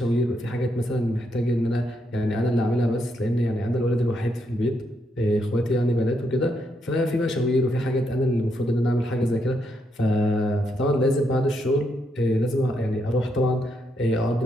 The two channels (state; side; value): normal; both; correlation 0.78